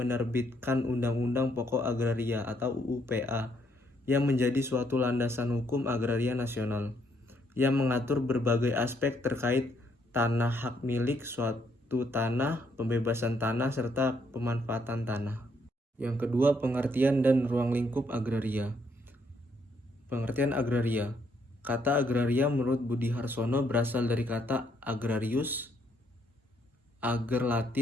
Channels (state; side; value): normal; both; correlation 0.71